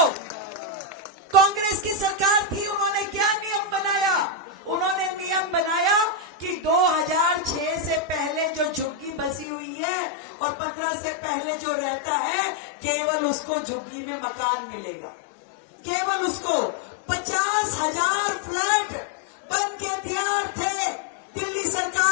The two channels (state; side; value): drops out; right; at 9.5 s